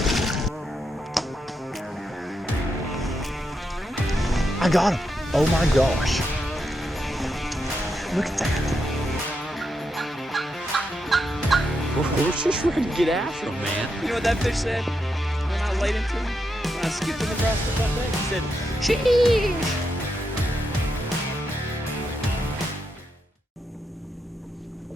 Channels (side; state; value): both; normal; correlation 0.83